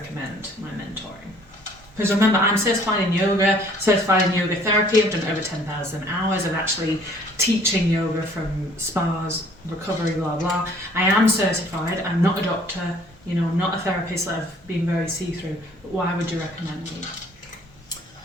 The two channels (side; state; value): both; normal; correlation 0.57